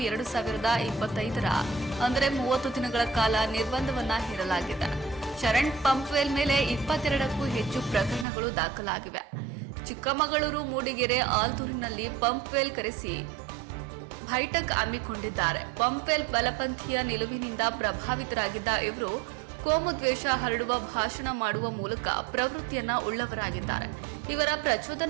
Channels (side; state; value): left; drops out; at 8.2 s